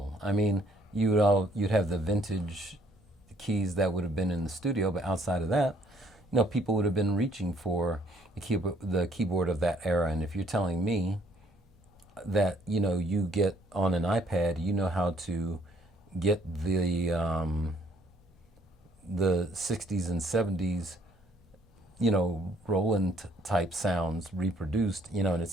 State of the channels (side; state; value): both; normal; correlation 0.64